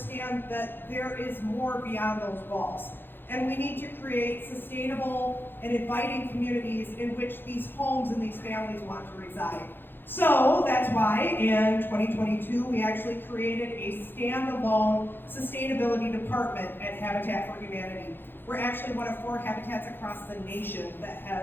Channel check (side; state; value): right; late; 0.10 ms